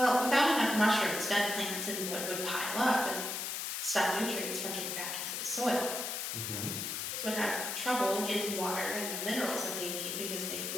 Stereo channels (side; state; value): left; noise; hiss, 3 dB below the sound